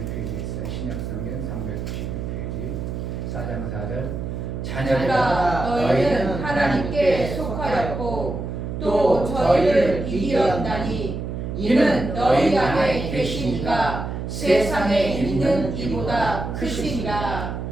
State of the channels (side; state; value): right; noise; hum, 5 dB below the sound